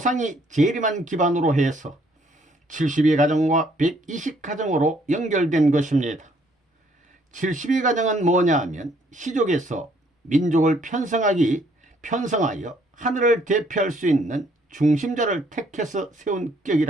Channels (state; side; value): normal; both; correlation 0.65